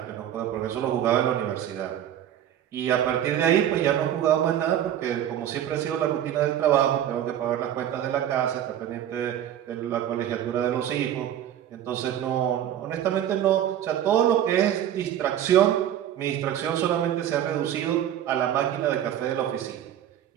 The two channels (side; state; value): left; quieter; 10.9 dB